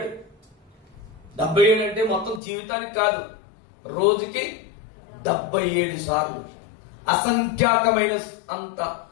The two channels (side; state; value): right; drops out; at 2.4 s